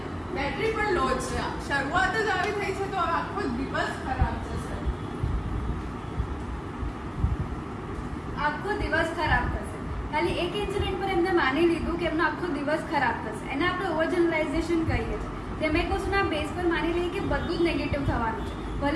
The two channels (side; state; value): both; identical; correlation 1.00